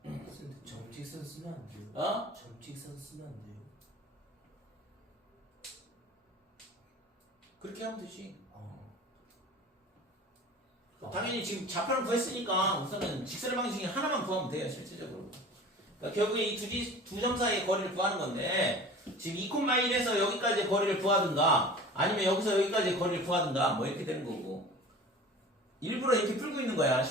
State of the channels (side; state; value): both; normal; correlation 0.40